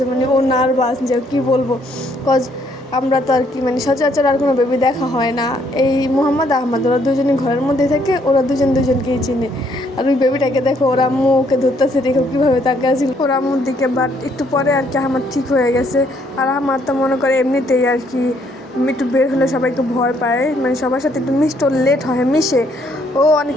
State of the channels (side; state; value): both; normal; correlation 0.68